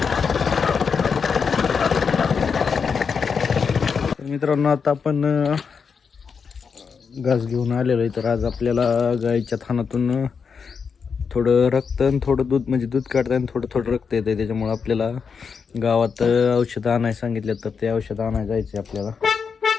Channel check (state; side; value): quieter; right; 5.9 dB